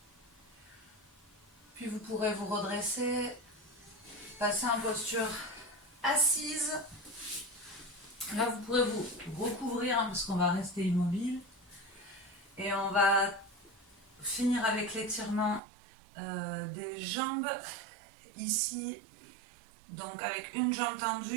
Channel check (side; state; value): left; drops out; at 15.6 s